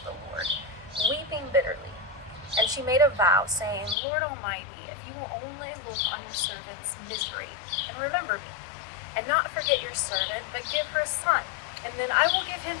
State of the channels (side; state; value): right; drops out; at 4.0 s